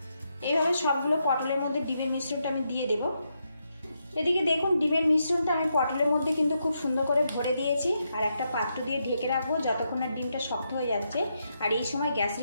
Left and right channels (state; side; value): inverted; both; correlation -0.82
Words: এইভাবে সবগুলো পটলের মধ্যে ডিমের মিশ্রণটা আমি দিয়ে দেব। এদিকে দেখুন ডিমের মিশ্রণটা আমি পটলের মধ্যে কিন্তু খুব সুন্দর করে ভরে দিয়েছি আর একটা পাত্র দিয়ে ঢেকে রাখবো যতক্ষণ না ডিমটা শক্ত হয়ে যাচ্ছে। আর এই সময় গ্যাস